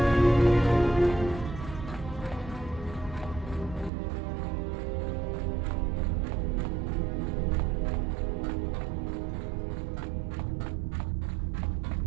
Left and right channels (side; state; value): left; drops out; at 3.9 s